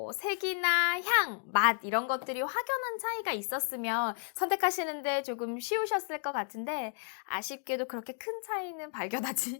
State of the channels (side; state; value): right; silent; 56 dB below the other